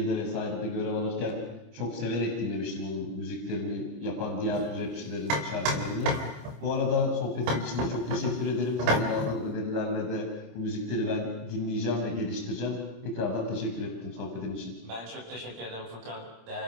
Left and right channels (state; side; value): late; left; 26 ms